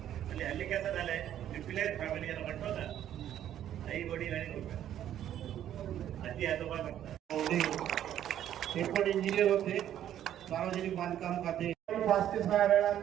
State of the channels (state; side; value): quieter; left; 11.1 dB